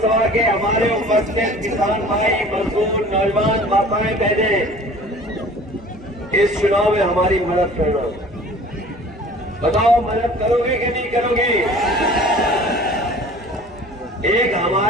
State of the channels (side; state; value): both; normal; correlation 0.46